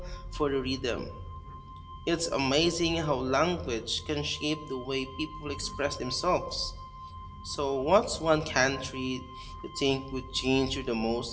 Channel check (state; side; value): identical; both; correlation 1.00